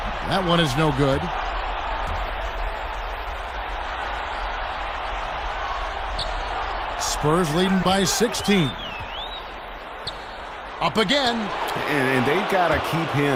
That one is no good. Spurs leading by 16. Up again. And they've got to keep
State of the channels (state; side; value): identical; both; correlation 1.00